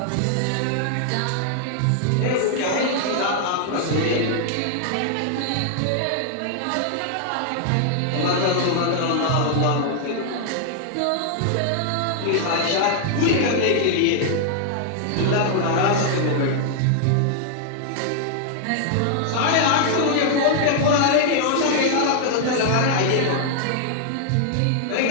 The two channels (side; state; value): both; different; correlation 0.00